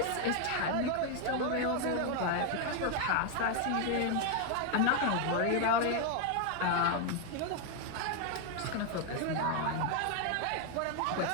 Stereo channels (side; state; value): both; different; correlation 0.01